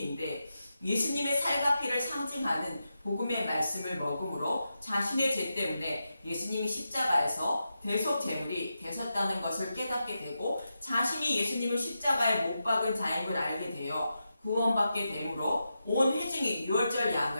예수님의 살과 피를 상징하는 복음의 말씀을 먹음으로 자신의 죄 때문에 예수님이 십자가에서 대속 제물이 되셨다는 것을 깨닫게 되고, 자신이 예수님을 십자가에 못 박은 자인 걸 알게 되어 구원받게 되므로 온 회중이 유월절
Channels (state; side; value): inverted; both; correlation -0.88